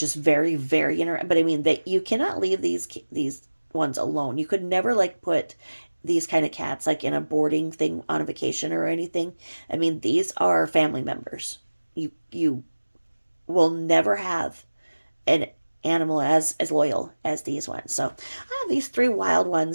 very, very but I mean, you cannot leave these ones alone. You could never put these kind of cats in a boarding thing on a vacation or anything. I mean, these are family members. You will never have an animal as loyal as these ones. So I have these 3 wild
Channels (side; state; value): both; inverted; correlation -1.00